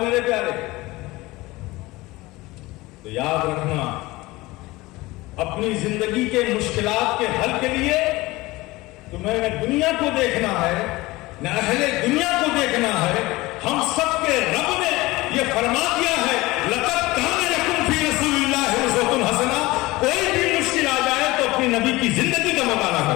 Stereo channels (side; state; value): right; quieter; 20.4 dB